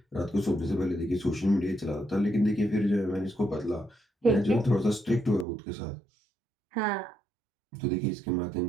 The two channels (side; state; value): left; drops out; at 5.5 s